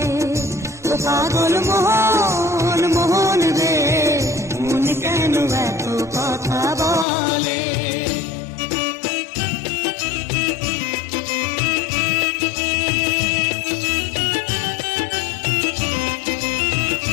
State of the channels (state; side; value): drops out; right; at 7.1 s